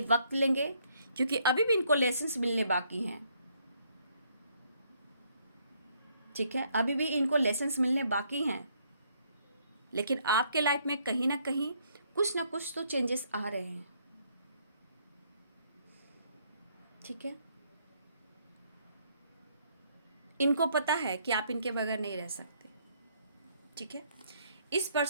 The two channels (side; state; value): both; inverted; correlation -0.69